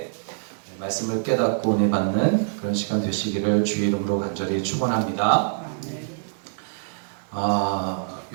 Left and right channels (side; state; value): left; silent; 56 dB below the other